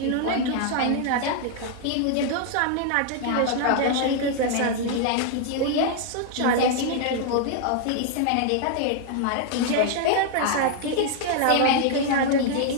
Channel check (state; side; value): different; both; correlation 0.00